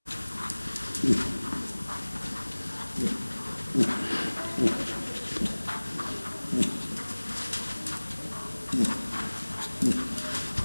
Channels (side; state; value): both; inverted; correlation -1.00